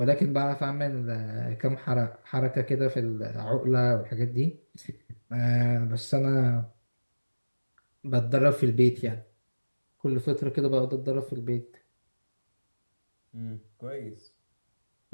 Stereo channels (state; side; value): inverted; both; correlation -1.00